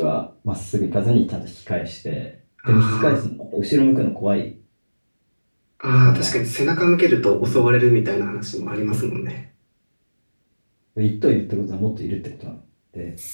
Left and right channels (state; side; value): inverted; both; correlation -1.00